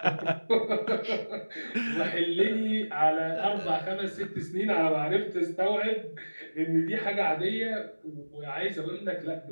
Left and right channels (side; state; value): both; inverted; correlation -1.00